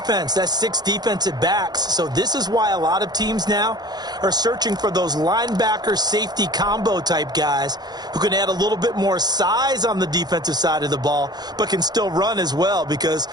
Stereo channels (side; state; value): left; late; 0.20 ms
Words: That's 6 defensive backs. So this is why a lot of teams now are searching for those linebacker safety combo type guys who can add a little bit more size on the defensive side of the ball, but can still run as well. Because